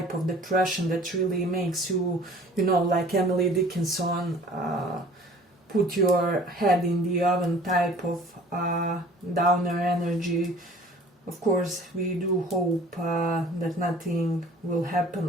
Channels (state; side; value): normal; both; correlation 0.49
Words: of depression that really makes you, you know, like Emily Dickinson, put your head in the oven type of downer energy. Of course, we do hope that nothing will